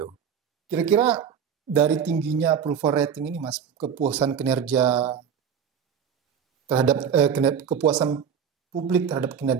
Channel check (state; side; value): quieter; left; 7.7 dB